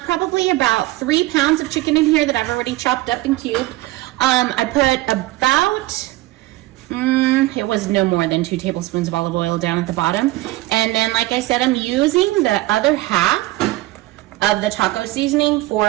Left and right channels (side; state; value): left; quieter; 18.2 dB